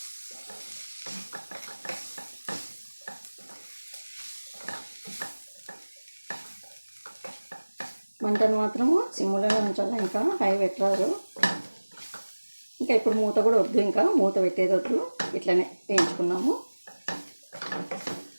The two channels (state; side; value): inverted; both; correlation -1.00